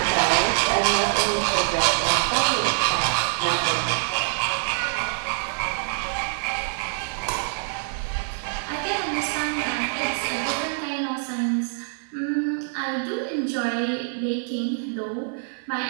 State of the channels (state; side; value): silent; left; digital silence